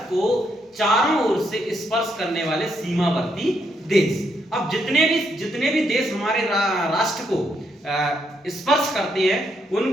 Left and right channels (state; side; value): normal; both; correlation 0.77